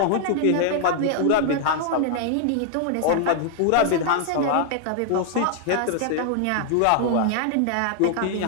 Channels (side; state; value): both; different; correlation 0.00